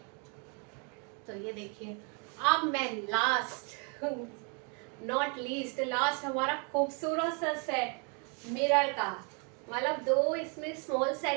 तो ये देखिए, अब मैं लास्ट नॉट लीस्ट, लास्ट हमारा खूबसूरत सा सेट मिरर का। मतलब 2 इसमें स्मॉल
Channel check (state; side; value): quieter; left; 36.6 dB